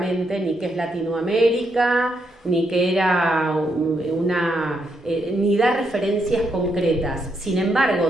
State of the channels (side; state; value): both; normal; correlation 0.79